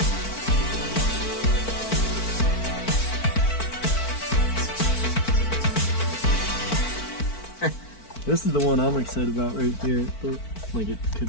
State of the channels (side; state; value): right; late; 4.5 ms